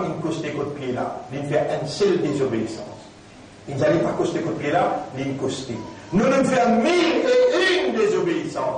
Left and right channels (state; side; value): identical; both; correlation 1.00